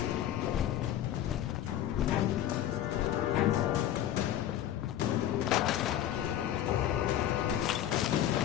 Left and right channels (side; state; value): right; quieter; 11.6 dB